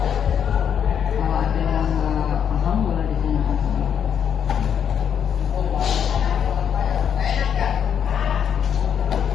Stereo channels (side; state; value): right; quieter; 8.2 dB